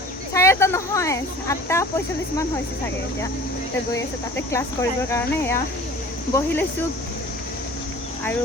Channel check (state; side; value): normal; both; correlation 0.44